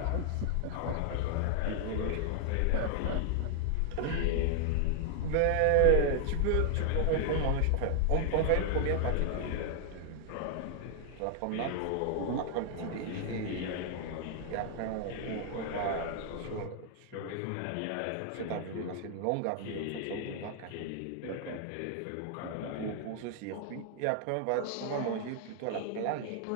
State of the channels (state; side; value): different; both; correlation 0.00